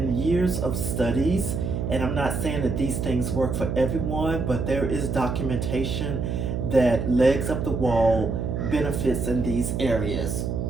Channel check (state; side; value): noise; right; hum, 2 dB below the sound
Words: years of studies, and I'm not saying that these things work for everyone, but there is documentation that legs up the wall benefits in these areas.